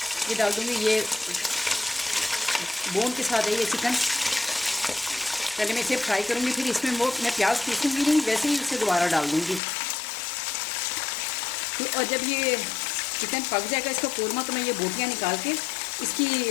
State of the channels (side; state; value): right; drops out; at 9.6 s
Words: ये डाल दूँगी। ये बोन के साथ है ये चिकन। पहले मैं इसे फ्राई करूँगी, फिर इसमें वो मैं प्याज पीसूँगी नहीं, वैसे ही इसे दोबारा डाल दूँगी। तो और जब ये चिकन पक जाएगा इसका कोरमा, तो मैं ये बोटियाँ निकाल के इसकी